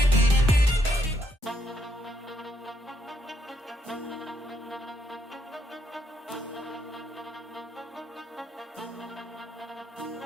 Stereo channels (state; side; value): normal; both; correlation 0.75